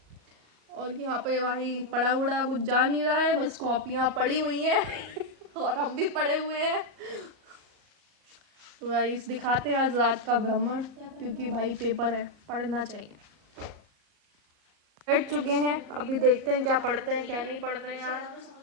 और यहाँ पे भाई पड़ा उड़ा कुछ जा नहीं रहा है, बस कॉपियाँ पड़ी हुई हैं और हम भी पड़े हुए हैं। तो गाइस दिखाते हैं आज रात का भ्रमण, क्योंकि भाई पेपर है, पढ़ना चाहिए। बैठ चुके हैं, अभी देखते हैं क्या पढ़ते हैं क्या नहीं पढ़ते हैं। यार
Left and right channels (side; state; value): left; late; 38 ms